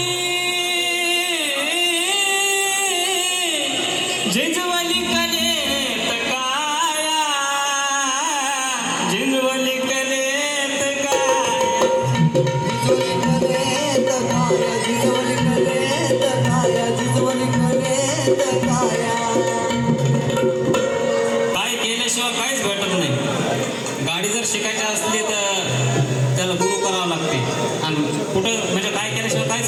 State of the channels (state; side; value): identical; both; correlation 1.00